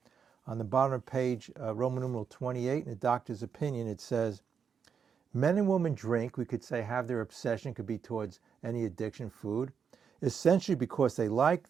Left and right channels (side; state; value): left; quieter; 6.8 dB